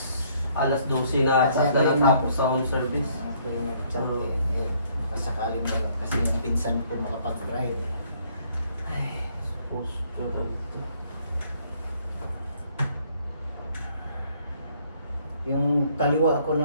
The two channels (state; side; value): inverted; both; correlation -0.65